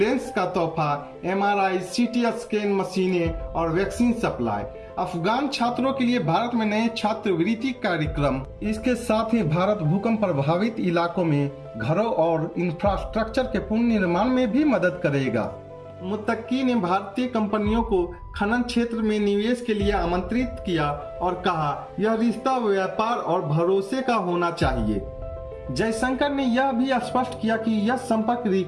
का तोहफा, MRI, CT स्कैन मशीनें और वैक्सीन सप्लाई। अफगान छात्रों के लिए भारत में नए छात्रवृत्ति कार्यक्रम। इसके साथ ही भारत भूकंप प्रभावित इलाकों में घरों और इंफ्रास्ट्रक्चर के पुनर्निर्माण में भी मदद करेगा। मुत्तकी ने भारतीय कंपनियों को खनन क्षेत्र में निवेश के लिए आमंत्रित किया और कहा, यह रिश्ता व्यापार और भरोसे का होना चाहिए। जयशंकर ने यह भी स्पष्ट किया कि यह संपर्क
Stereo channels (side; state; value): both; identical; correlation 1.00